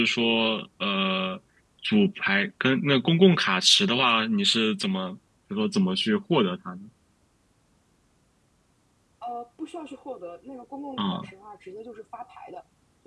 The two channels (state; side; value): identical; both; correlation 1.00